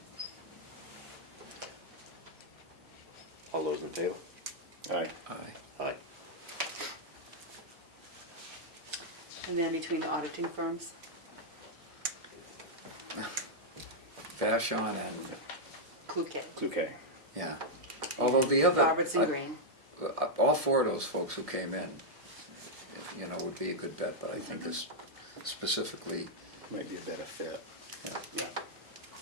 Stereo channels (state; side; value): normal; both; correlation -0.04